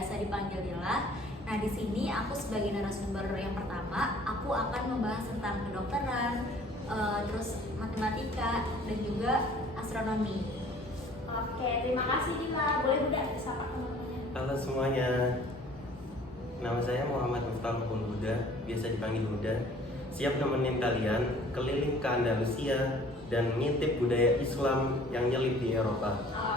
dipanggil Dila. Nah, di sini aku sebagai narasumber yang pertama, aku akan membahas tentang kedokteran, terus matematika dan juga astronomi. Oke, terima kasih Dila. Boleh Huda disapa teman-temannya. Halo semuanya, nama saya Muhammad Miftahul Huda, biasa dipanggil Huda. Siap nemenin kalian keliling ke Andalusia dan ngintip budaya Islam yang nyelip di Eropa.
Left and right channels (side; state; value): both; normal; correlation 0.52